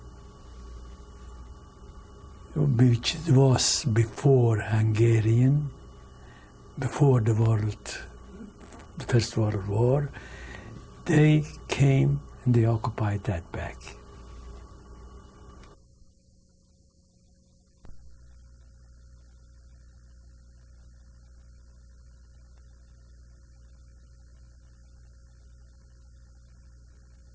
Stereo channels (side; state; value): both; identical; correlation 1.00